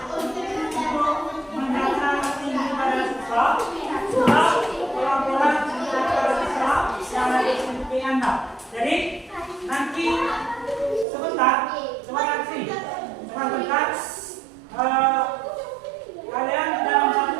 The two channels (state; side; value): drops out; left; at 11.1 s